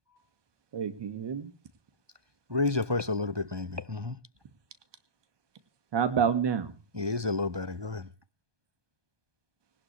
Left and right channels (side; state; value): left; late; 1.2 ms